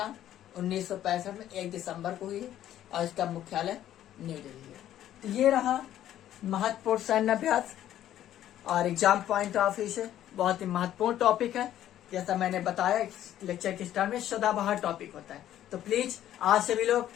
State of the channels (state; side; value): quieter; right; 12.0 dB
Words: 1965 में 1 दिसंबर को हुई है, और इसका मुख्यालय न्यू दिल्ली है। तो ये रहा महत्वपूर्ण सैन्य अभ्यास, और एग्जाम पॉइंट ऑफ व्यू से बहुत ही महत्वपूर्ण टॉपिक है। जैसा मैंने बताया लेक्चर के स्टार्ट में, सदाबहार टॉपिक होता है। तो प्लीज आज सभी लोग